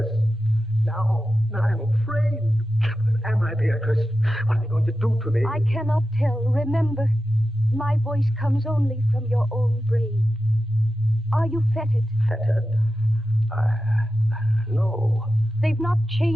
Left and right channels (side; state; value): both; normal; correlation 0.92